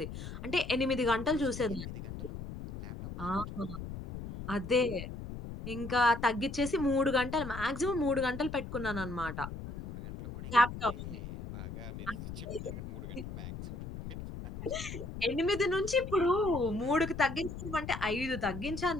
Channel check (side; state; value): left; noise; rumble, 9 dB below the sound